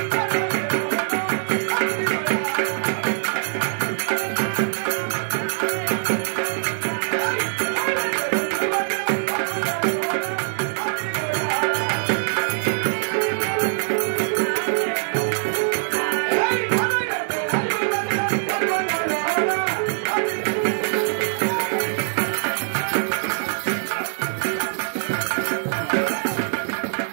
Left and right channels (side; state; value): left; silent; digital silence